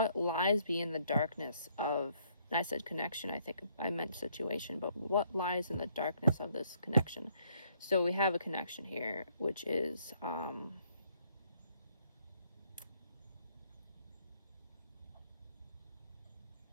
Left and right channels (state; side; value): inverted; both; correlation -0.68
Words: lies in the darkness of, and I said connection, I think I meant situation, but what lies in the darkness of this connection? So we have a connection here, which is